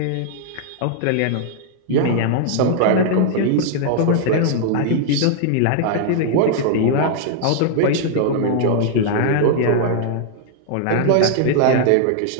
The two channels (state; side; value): different; both; correlation -0.01